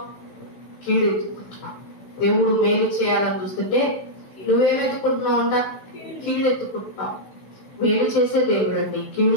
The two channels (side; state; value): right; late; 16 ms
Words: కీడెత్తుకుంటున్నావు. దేవుడు మేలు చేయాలని చూస్తుంటే నువ్వేమెత్తుకుంటున్నావు అంట? కీడెత్తుకుంటున్నావు. మేలు చేసే దేవుడు అండి, కీడు